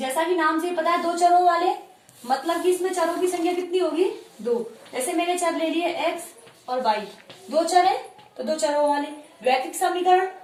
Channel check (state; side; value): identical; both; correlation 1.00